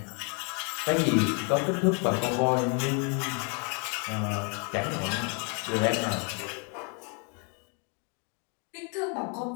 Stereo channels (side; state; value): right; quieter; 36.4 dB